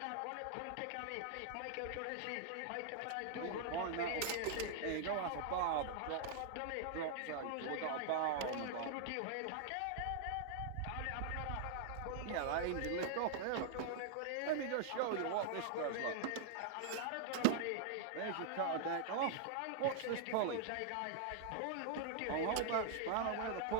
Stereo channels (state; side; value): different; both; correlation -0.01